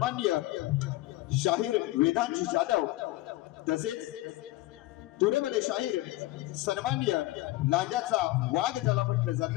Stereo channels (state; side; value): quieter; right; 18.1 dB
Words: शाहीर वेदांत जाधव, तसेच तुरेवाले शाहीर सन्माननीय लांजाचा वाघ ज्याला म्हटलं